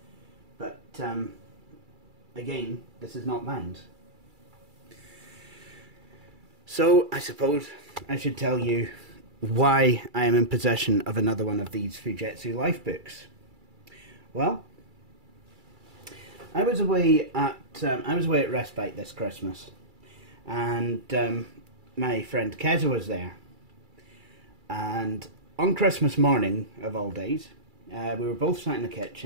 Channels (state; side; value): late; left; 2.3 ms